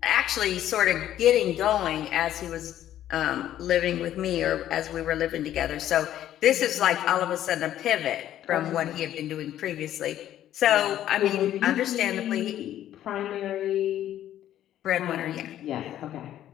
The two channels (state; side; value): quieter; right; 12.0 dB